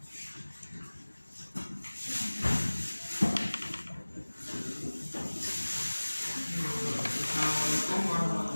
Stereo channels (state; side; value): inverted; both; correlation -1.00